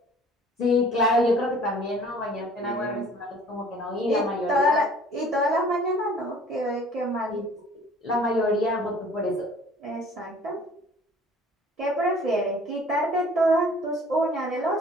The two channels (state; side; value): normal; both; correlation 0.51